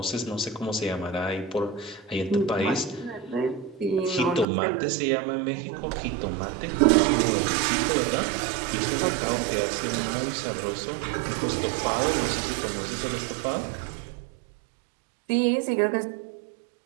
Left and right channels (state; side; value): drops out; left; at 4.5 s